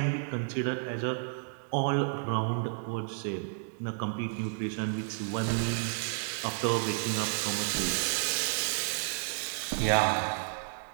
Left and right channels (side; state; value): left; silent; 57 dB below the other